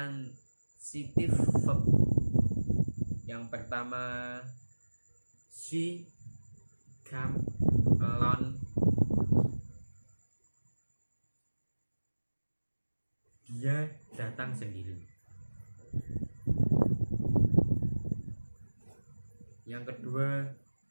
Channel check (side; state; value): both; inverted; correlation -1.00